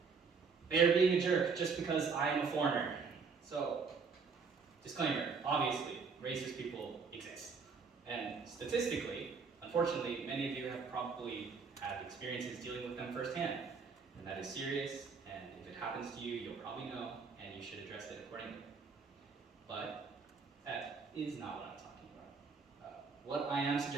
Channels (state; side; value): quieter; left; 5.2 dB